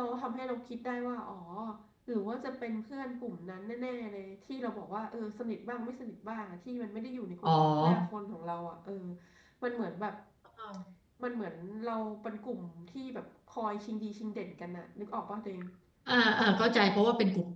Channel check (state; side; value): identical; both; correlation 1.00